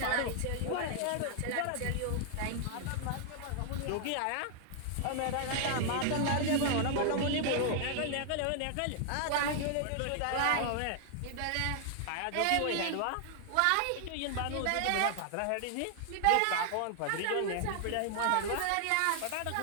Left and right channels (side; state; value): both; different; correlation 0.00